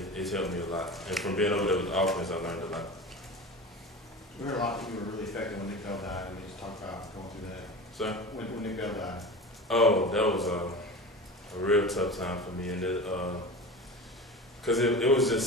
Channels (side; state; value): both; normal; correlation 0.31